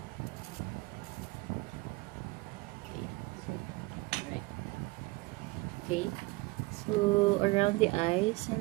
Okay, so right. Okay, so around the eyes,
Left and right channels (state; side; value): quieter; left; 23.3 dB